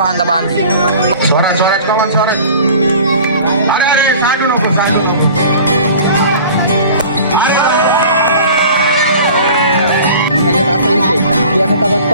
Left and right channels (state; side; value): inverted; both; correlation -0.43